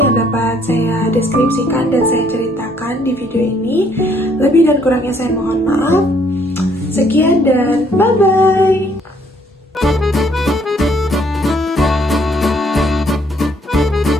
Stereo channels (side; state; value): both; normal; correlation 0.66